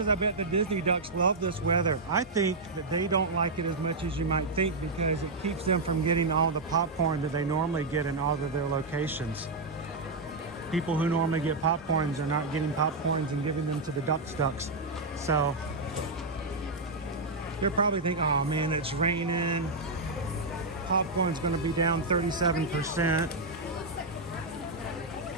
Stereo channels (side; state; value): left; quieter; 3.3 dB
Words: I bet the Disney ducks love this weather. I think that they don't like it as much as you might think because it keeps them from getting all the popcorn that they normally get in all of their locations. People who normally get popcorns are not getting popcorns and giving them to the ducks. So they're probably thinking, oh man, it's raining. Popcorn's gonna be down 37%.